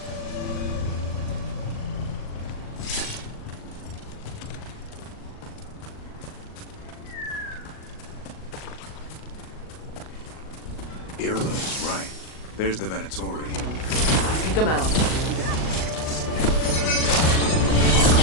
Irla is right. There's the Venatori. Kick him out.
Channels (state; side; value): late; right; 39 ms